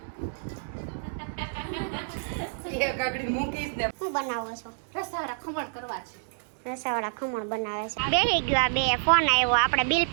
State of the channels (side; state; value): left; silent; digital silence